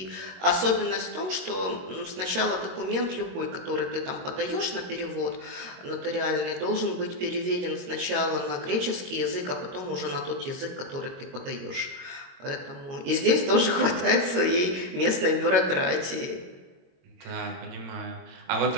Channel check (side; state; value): left; late; 22 ms